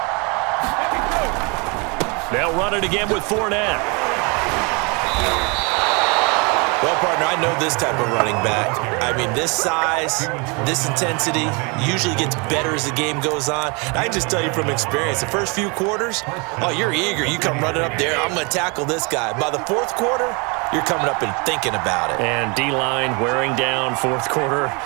They'll run it again with Fournette. Well, partner, I know this type of running back. I mean, this size, this intensity usually gets better as the game goes on. I can just tell you from experience, the first few quarters, oh, you're eager. You come running up there, I'm going to tackle this guy. By the 4th quarter, you're coming up and thinking about it. And D-line wearing down 4th quarter.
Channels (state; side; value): quieter; left; 30.9 dB